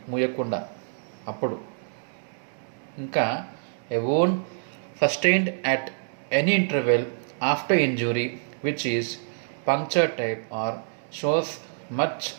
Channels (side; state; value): left; silent; digital silence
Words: మూయకుండా అప్పుడు. ఇంకా a wound sustained at any interval after injury which is puncture type or shows much